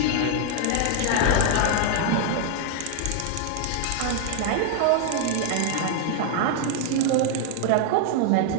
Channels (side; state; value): both; different; correlation 0.00